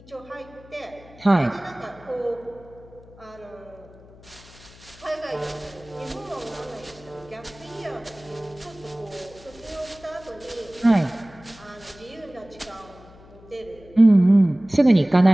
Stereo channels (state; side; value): noise; left; hum, 22 dB below the sound